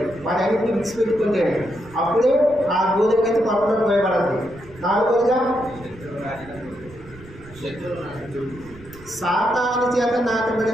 వాటన్నిటిని విడిచిపెట్టుకుంటే అప్పుడే ఆ గోధుమ అయితే పక్కన పోయబడద్ది. నాలుగోదిగా సాతాను చేత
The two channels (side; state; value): right; noise; rumble, 20 dB below the sound